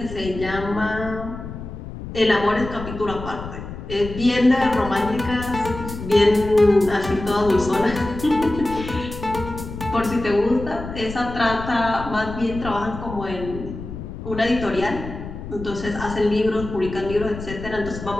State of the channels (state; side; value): noise; left; rumble, 10 dB below the sound